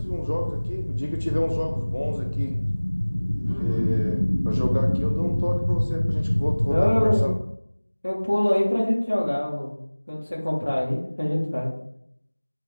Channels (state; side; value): inverted; both; correlation -1.00